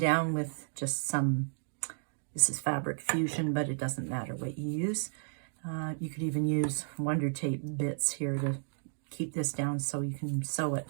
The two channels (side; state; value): left; silent; digital silence